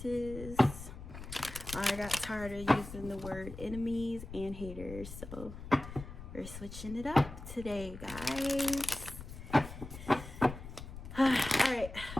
I got tired of using the word enemies and haters, so we're switching it up today, guys. Alright,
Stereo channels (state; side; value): noise; left; rumble, 11 dB below the sound